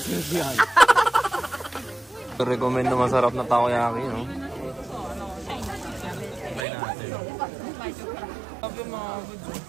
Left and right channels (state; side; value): drops out; left; at 6.7 s